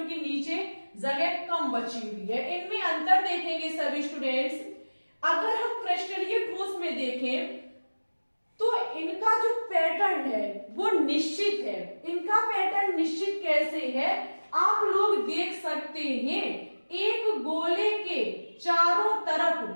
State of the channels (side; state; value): both; inverted; correlation -1.00